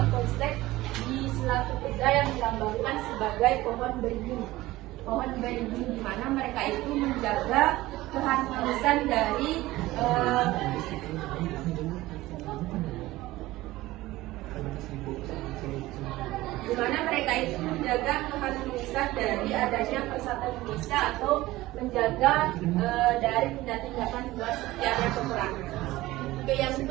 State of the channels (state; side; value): quieter; left; 17.8 dB